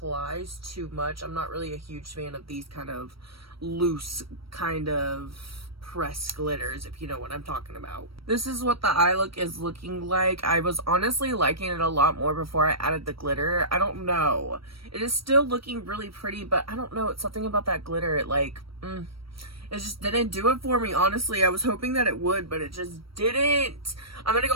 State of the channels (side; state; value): left; late; 0.75 ms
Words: too much. I'm not really a huge fan of these kind of loose kind of pressed glitters, if you know what I'm talking about. This is what the eye look is looking like. I was honestly liking it a lot more before I added the glitter. I don't know. It is still looking really pretty, but I don't know. It's something about that glitter. It like, it just didn't do it for me, honestly. I was hoping that it would, but it just didn't. I'm gonna